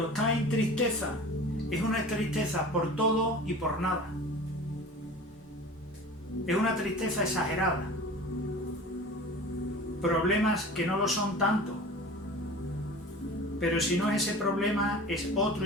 está en tristeza, es una tristeza por todo y por nada. Es una tristeza exagerada. Problemas que no lo son tanto. Pero si no es ese problema, es otro,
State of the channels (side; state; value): both; normal; correlation 0.39